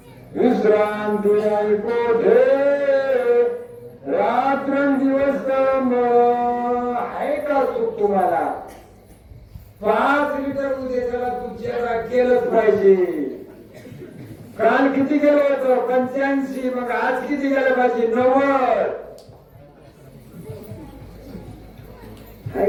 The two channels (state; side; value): identical; both; correlation 1.00